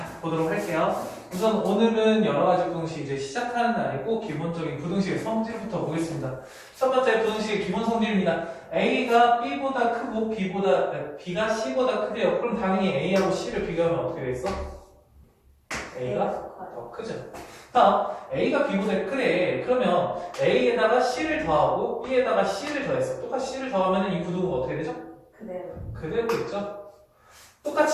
보도록 할게요. 우선 오늘은 여러 가지 부등식 이제 시작하는 날이고 기본적인 부등식의 성질부터 보겠습니다. 첫 번째 부등식의 기본 성질입니다. A가 B보다 크고 B가 C보다 크대요. 그럼 당연히 A하고 C를 비교하면 어떻게 되겠어? A가 더 크죠. 다음, A가 B보다 크래. 그러면 A에다가 C를 더하고 B에다가 C를 더했어. 똑같이 C를 더하면 이 부등호가 어떻게 되죠? 그대로 있죠.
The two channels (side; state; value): both; identical; correlation 1.00